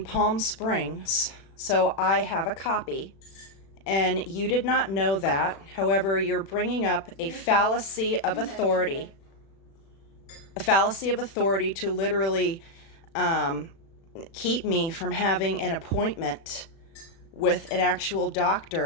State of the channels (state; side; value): late; right; 36 ms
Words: Palm Springs, so I have a copy. And you did not know that. However, you're bringing up a fallacy of authority. A fallacy of authority to literally keep me from having an appointment with an actual